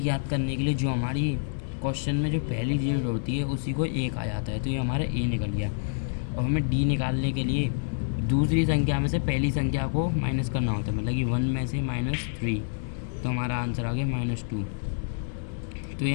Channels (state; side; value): silent; right; digital silence